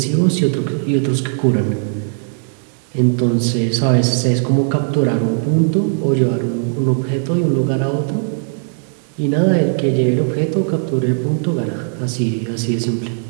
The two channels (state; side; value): silent; left; digital silence